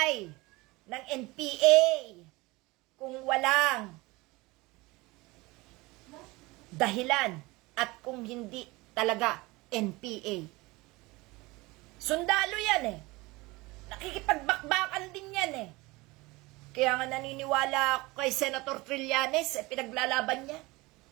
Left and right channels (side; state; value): left; quieter; 22.4 dB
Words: ng NPA kung walang dahilan at kung hindi talaga NPA. Sundalo yan eh. Nakikipagbakbakan din yan eh. Kaya nga naniniwala ako kay Senator Trillanes, pinaglalaban niya.